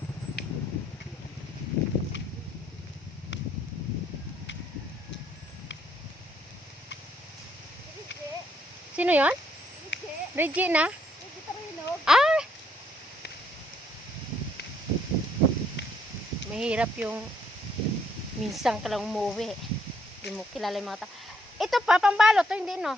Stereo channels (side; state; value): both; normal; correlation 0.69